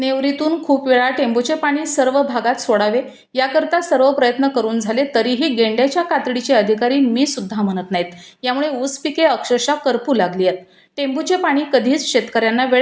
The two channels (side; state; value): both; identical; correlation 1.00